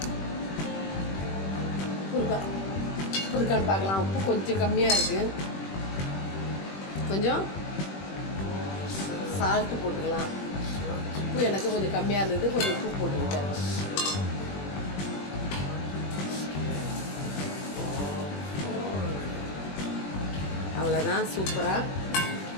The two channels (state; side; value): late; right; 21 ms